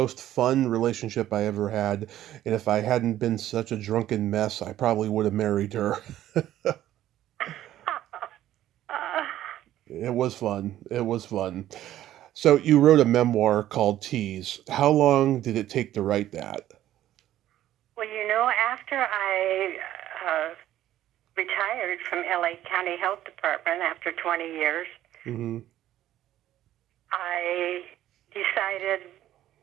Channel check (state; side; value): quieter; left; 13.0 dB